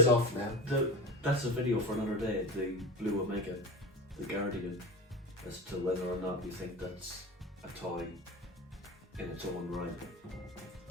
off now. That's a video for another day, the Blue Omega, the Guardian, as to whether or not you think that's a toy in its own right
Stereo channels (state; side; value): normal; both; correlation 0.28